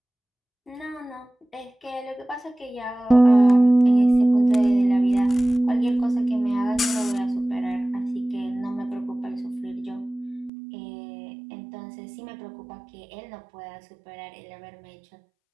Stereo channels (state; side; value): drops out; left; at 10.5 s